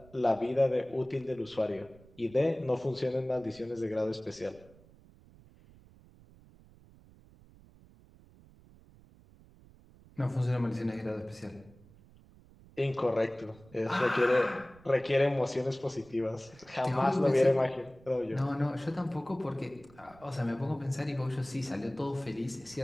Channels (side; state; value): right; noise; rumble, 24 dB below the sound